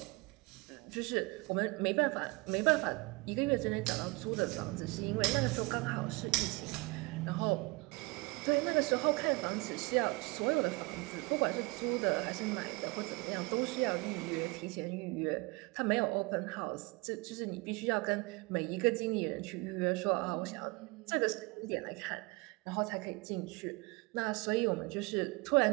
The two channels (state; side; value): quieter; left; 25.8 dB